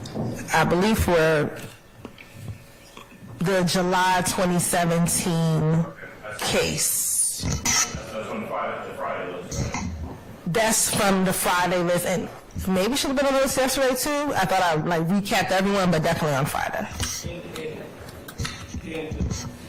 I believe, for the July 2017 case. That's on the Friday list, right? That's from the Friday list, and maybe should have been on the list yesterday too. I thought I recapped everyone, but definitely on Friday.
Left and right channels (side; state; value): both; identical; correlation 1.00